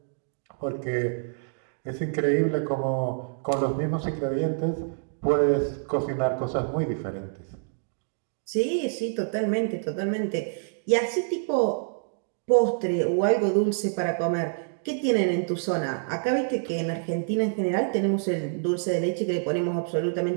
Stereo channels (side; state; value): left; silent; digital silence